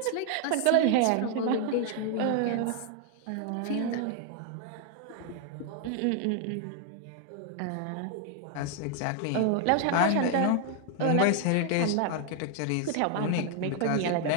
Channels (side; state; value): both; different; correlation 0.00